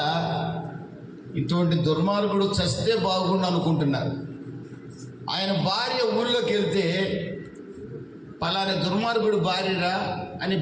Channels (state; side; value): identical; both; correlation 1.00